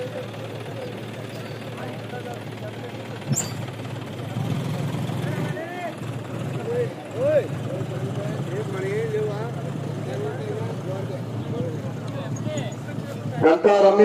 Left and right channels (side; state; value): both; identical; correlation 1.00